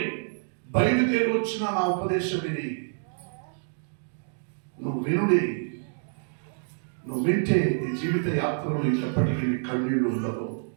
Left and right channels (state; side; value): silent; left; digital silence